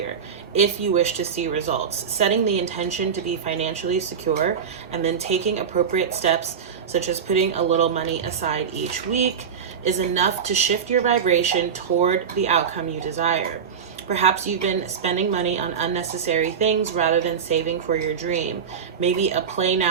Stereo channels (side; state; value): left; quieter; 7.1 dB